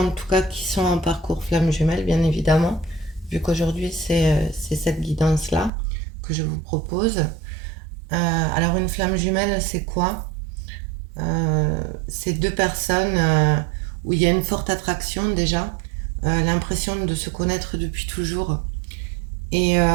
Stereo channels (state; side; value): drops out; left; at 5.7 s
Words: tout cas qui sont en parcours flamme jumelle, bien évidemment, vu qu'aujourd'hui c'est cette guidance-là que je vous propose. Alors une flamme jumelle, c'est quoi? C'est deux personnes où il y a une forte attraction déjà, l'impression de se connaître depuis toujours et,